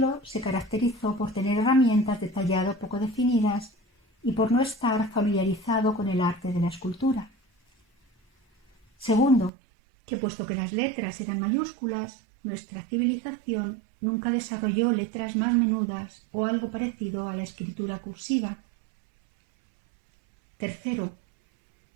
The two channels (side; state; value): left; drops out; at 9.5 s